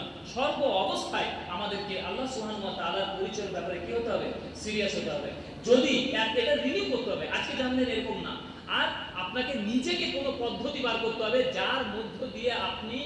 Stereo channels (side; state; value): both; identical; correlation 1.00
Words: সর্ব অবস্থায় আমাদেরকে আল্লাহ সুবহানাহু ওয়া তাআলার পরিচয়ের ব্যাপারে কি হতে হবে? সিরিয়াস হতে হবে। যদি এটা রিনিউ করতে হবে, আজকে জানলেন এরকম না। আর আপনাকে নিজেকে কোনো পদ্ধতি বার করতে হবে যার মধ্য দিয়ে আপনি